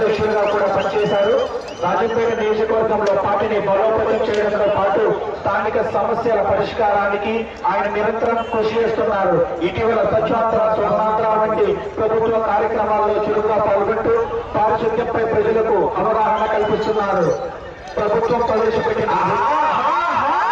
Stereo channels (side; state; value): both; identical; correlation 1.00